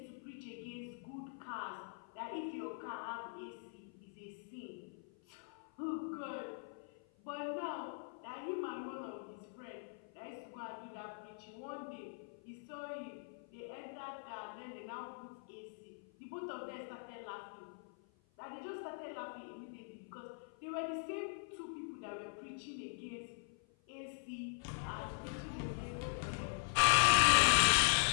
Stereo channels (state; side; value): silent; right; 50 dB below the other